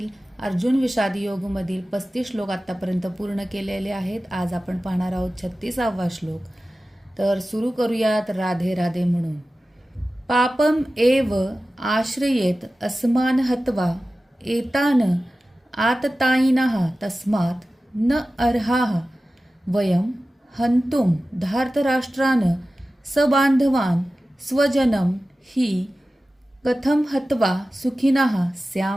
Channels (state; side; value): normal; both; correlation 0.95